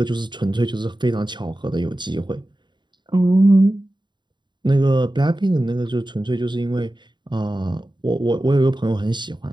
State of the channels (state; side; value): late; left; 0.22 ms